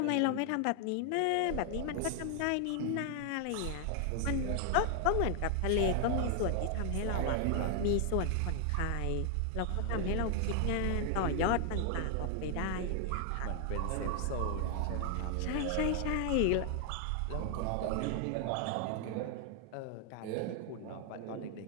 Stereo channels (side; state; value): both; different; correlation 0.00